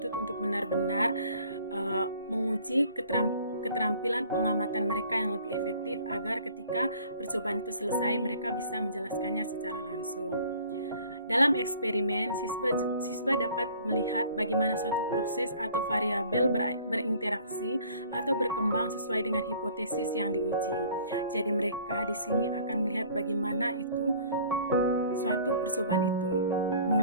untuk benar-benar menguji keterampilan pengamatan mereka yang lebih efektif agar ketika percobaan itu selesai mereka bisa menjelaskannya secara langsung. Dalam eksperimen, siswa dapat melihat bagaimana suatu proses atau variabel berinteraksi atau berkembang sesuai dengan hipotesis yang diuji. Jadi mereka di sini akan melihat bagaimana suatu percobaan itu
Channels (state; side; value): inverted; both; correlation -0.52